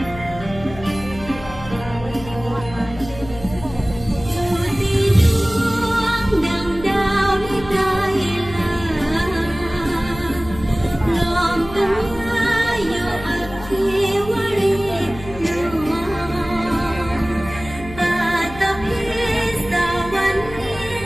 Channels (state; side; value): noise; left; hum, 14 dB below the sound